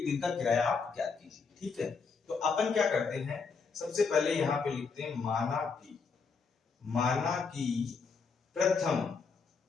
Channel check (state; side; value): quieter; right; 5.1 dB